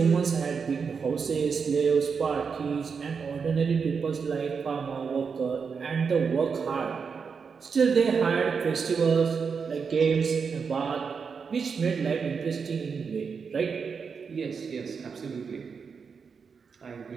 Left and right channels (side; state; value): left; quieter; 5.8 dB